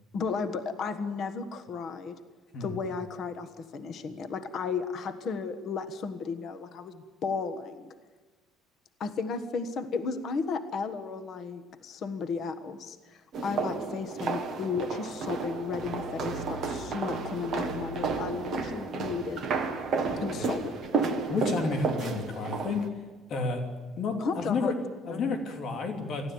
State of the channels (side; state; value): both; normal; correlation 0.55